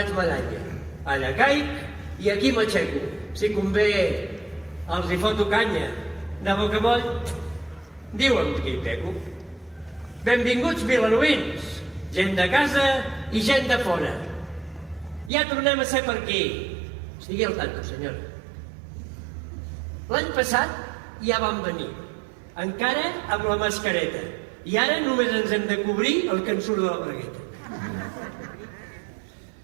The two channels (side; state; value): left; drops out; at 15.3 s